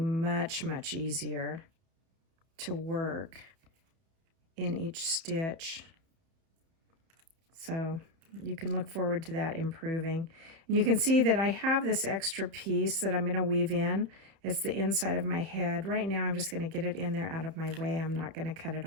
much, much easier to work in each stitch. So you can look forward to that improving. And you can see that I have this extra piece that I'm going to weave in. It's the inside of my head. Right now I'm just going to get it in there out of my way. I'm not going to cut it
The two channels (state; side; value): late; left; 30 ms